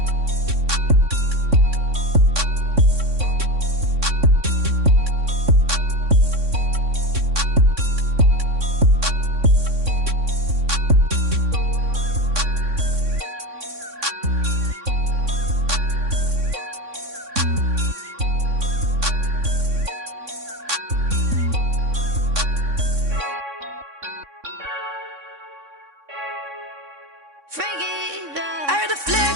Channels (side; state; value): left; late; 3.6 ms